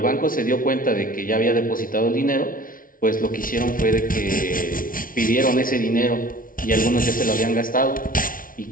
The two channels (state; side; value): late; right; 0.40 ms